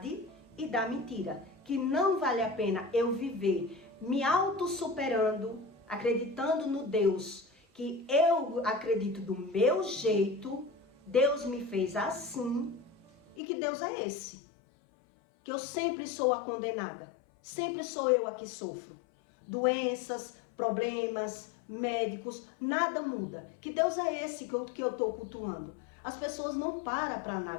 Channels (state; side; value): drops out; right; at 13.4 s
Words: e da mentira. Que não vale a pena eu viver me auto-superando, acreditando no Deus, que eu acredito do meu jeito, Deus me fez assim, e que Deus é esse. Que eu sempre sou a condenada, sempre sou eu a que sofro. Doenças, problemas, médicos, nada muda. Que Deus é esse que eu estou cultuando? As pessoas não param para